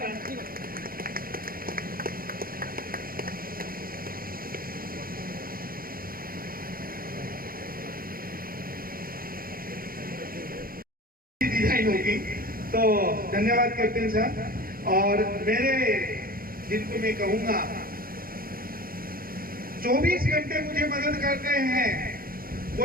डिजाइन होगी तो धन्यवाद कैप्टन साहब। और मेरे जिनको मैं कहूंगा 24 घंटे मुझे मदद करते हैं।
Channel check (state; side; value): late; left; 0.42 ms